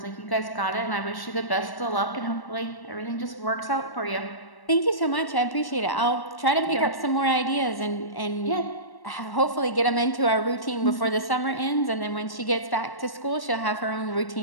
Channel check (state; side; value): late; right; 1.1 ms